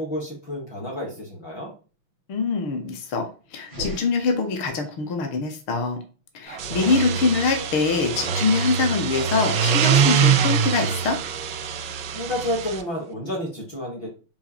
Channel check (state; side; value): late; right; 6.1 ms